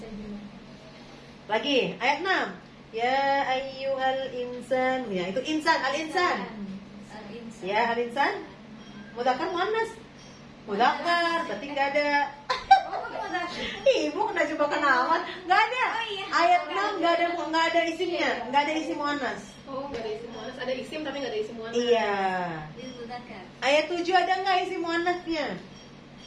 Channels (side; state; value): both; identical; correlation 1.00